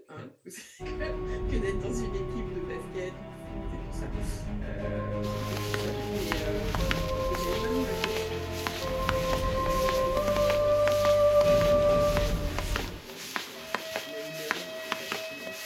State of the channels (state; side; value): identical; both; correlation 1.00